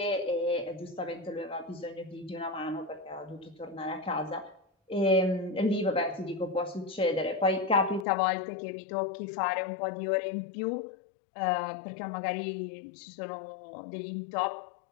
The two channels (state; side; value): drops out; right; at 8.1 s